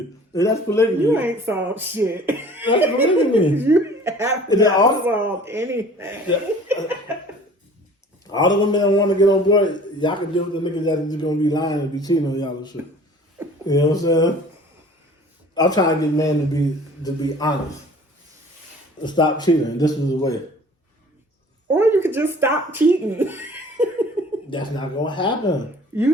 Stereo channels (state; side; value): normal; both; correlation 0.48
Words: And that's polygamy. You ain't solved shit. That's polygamy. You have not solved anything. Yeah. All the women that want to get on board, y'all can deal with the niggas that are just going to be lying and be cheating on y'all and shit. You know what I'm saying? I'm trying to get men to be honest and stop cheating. This is the way. Or you could just stop cheating. That's not going to happen. You